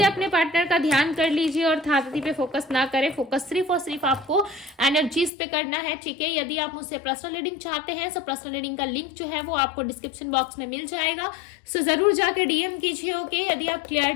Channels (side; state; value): right; drops out; at 5.3 s